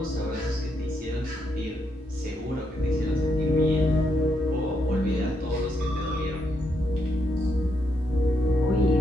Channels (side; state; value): both; normal; correlation 0.79